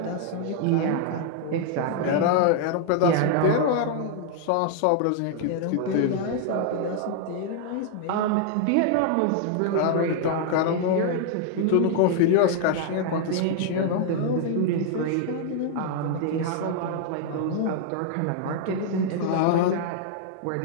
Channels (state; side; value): different; both; correlation 0.00